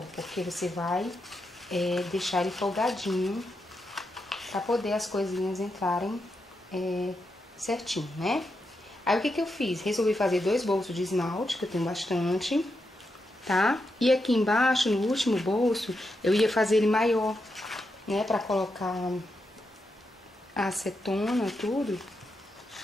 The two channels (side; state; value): both; normal; correlation 0.85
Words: porque você vai deixar ele folgadinho para poder as coisinhas entrarem certinho, né? Aí o que eu fiz? Resolvi fazer 2 bolsos de esmalte, que eu tenho bastante, tá? E aqui embaixo, no último bolso, eu ia fazer ele maior, né? Pra colocar a acetona, tudo.